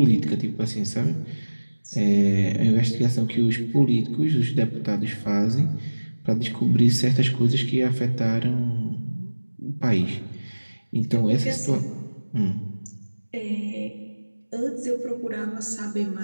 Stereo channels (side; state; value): both; inverted; correlation -1.00